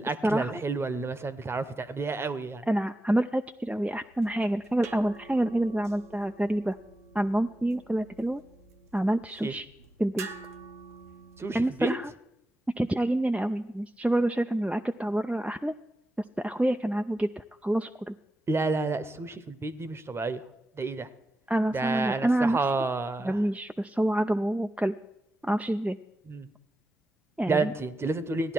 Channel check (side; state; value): both; normal; correlation 0.90